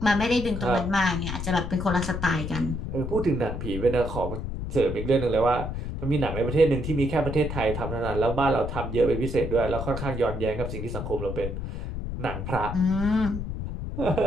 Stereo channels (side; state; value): left; noise; rumble, 5 dB below the sound